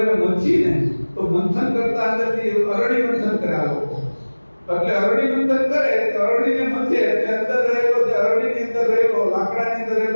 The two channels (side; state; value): both; inverted; correlation -1.00